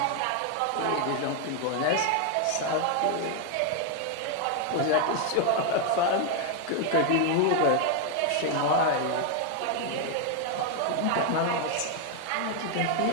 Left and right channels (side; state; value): both; different; correlation 0.01